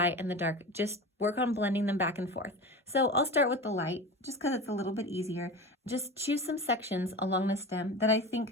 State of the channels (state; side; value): normal; both; correlation 0.30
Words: and the dark. Just work on blending them back and forth. So I'll start with the light just because it's a little bit easier. Just choose some sections along the stem that I